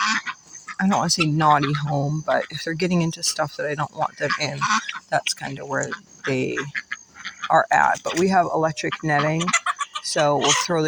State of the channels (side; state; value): both; identical; correlation 1.00